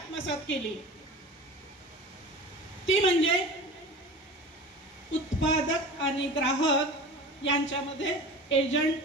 केली, ती म्हणजे उत्पादक आणि ग्राहक यांच्यामध्ये एजंट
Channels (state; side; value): normal; both; correlation 0.36